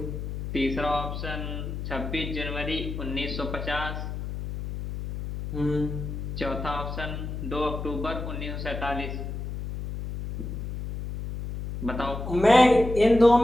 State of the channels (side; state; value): left; noise; hum, 6 dB below the sound